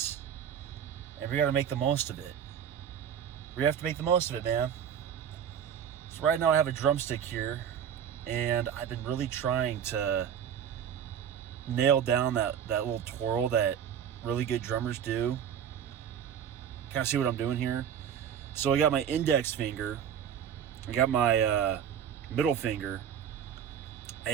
and we got to make the most of it. We have to make the most of it, man. So right now I have a drumstick here, and I've been really trying to nail down that little twirl that really good drummers do. Kind of see what I'm doing here. So I got my index finger, I got my middle finger,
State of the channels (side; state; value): left; quieter; 8.7 dB